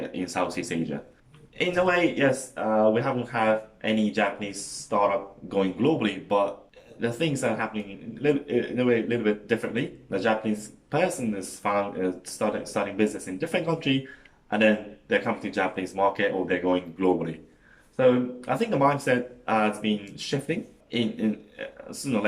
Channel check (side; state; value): both; identical; correlation 1.00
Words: in Southeast Asia. In a way, yes, we haven't had any Japanese startup going globally, but the things are happening in a way a little bit differently. The Japanese person is starting business in different country, and then they're coming to Japanese market or they're going globally. So I think the mindset has been shifting. In sooner or